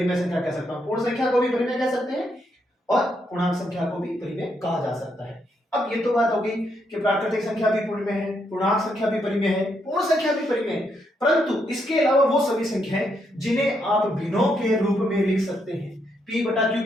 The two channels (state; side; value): normal; both; correlation 0.78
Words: संख्या कह सकता हूं, पूर्ण संख्या को भी परिमेय कह सकते हैं और पूर्णांक संख्या को भी परिमेय कहा जा सकता है। अब ये तो बात हो गई कि प्राकृतिक संख्या भी परिमेय है, पूर्णांक संख्या भी परिमेय है, पूर्ण संख्या भी परिमेय है, परंतु इसके अलावा वो सभी संख्याएं जिन्हें आप भिन्नों के रूप में लिख सकते हैं, p बटा q